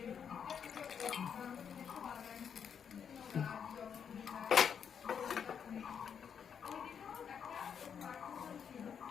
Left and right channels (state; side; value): quieter; right; 7.5 dB